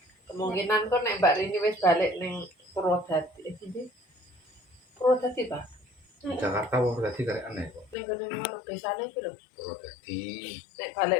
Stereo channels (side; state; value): right; drops out; at 8.0 s